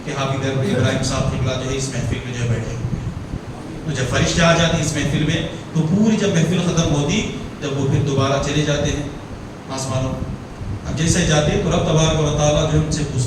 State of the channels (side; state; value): both; identical; correlation 1.00